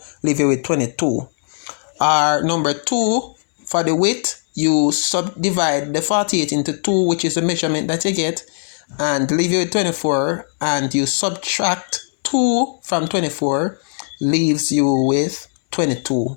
leave it with 22. Or number 2, for the width, you subdivide the 48 into 2, which is the measurement that you get, and leave it with 24, and you subtract 2 from 24, leaves you with 22.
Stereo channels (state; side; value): silent; right; digital silence